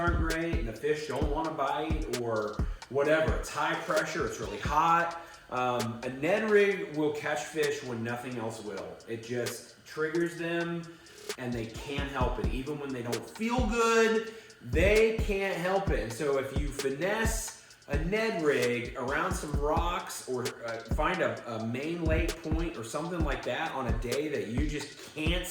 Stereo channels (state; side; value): identical; both; correlation 1.00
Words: great and the fish don't want to bite or whatever, it's high pressure, it's really hot, a Ned Rig will catch fish when nothing else will. It just triggers them, and they can't help it. Even when they don't feel good, they can't help it. And so if you finesse a Ned Rig around some rocks, or find a main lake point or something like that on a day that you just can't